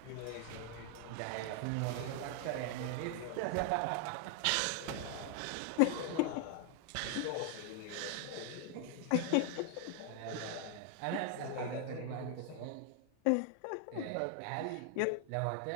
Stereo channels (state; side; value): different; both; correlation 0.00